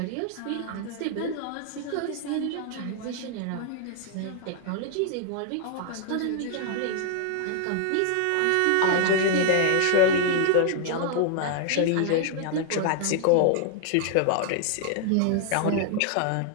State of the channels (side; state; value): both; different; correlation 0.00